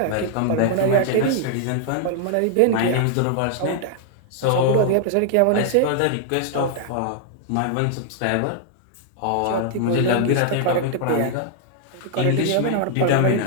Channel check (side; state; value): both; different; correlation 0.00